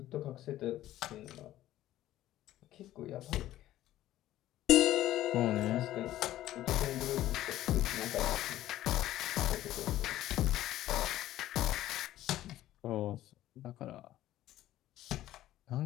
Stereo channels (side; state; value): right; quieter; 14.1 dB